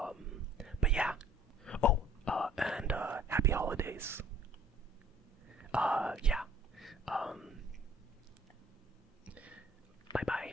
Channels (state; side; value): normal; both; correlation 0.54